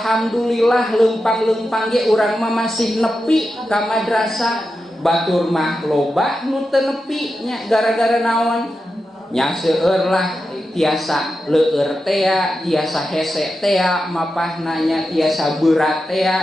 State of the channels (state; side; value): normal; both; correlation 0.90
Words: leumpang-leumpang ge urang mah masih nepi ka madrasah batur mah loba nu teu nepi nya gara-gara naon nya seueur lah tiasa leueur teh tiasa hese teh mapahna nya tiasa berat teh